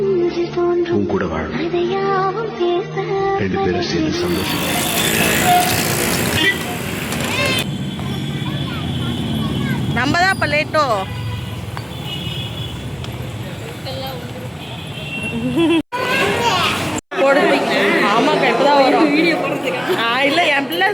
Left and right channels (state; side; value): identical; both; correlation 1.00